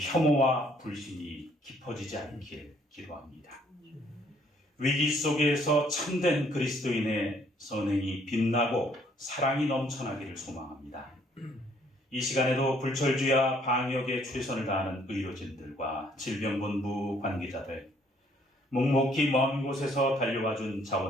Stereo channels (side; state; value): both; normal; correlation 0.64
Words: 불신이 깊어지지 않길 기도합니다. 위기 속에서 참된 그리스도인의 선행이 빛나고 사랑이 넘쳐나기를 소망합니다. 이 시간에도 불철주야 방역에 최선을 다하는 의료진들과 질병본부 관계자들, 묵묵히 먼 곳에서 달려와준